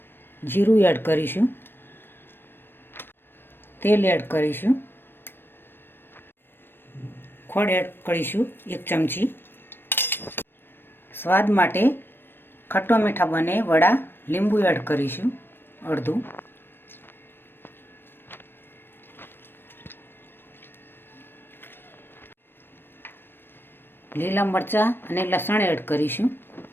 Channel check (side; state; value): right; late; 0.099 ms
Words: જીરું એડ કરીશું, તેલ એડ કરીશું, ખોળ એડ કરીશું 1 ચમચી। સ્વાદ માટે ખટ્ટા મીઠા બને વડા લીંબુ એડ કરીશું અડધું। લીલા મરચાં અને લસણ એડ કરીશું।